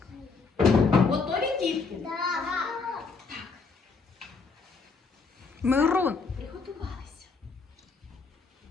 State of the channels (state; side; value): quieter; right; 4.6 dB